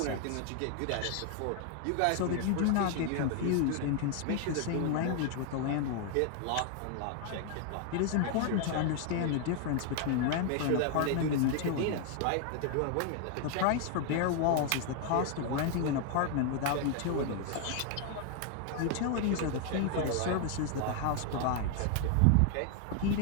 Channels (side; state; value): both; different; correlation 0.00